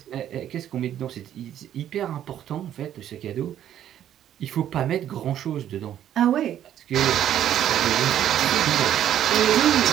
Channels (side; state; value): left; quieter; 10.9 dB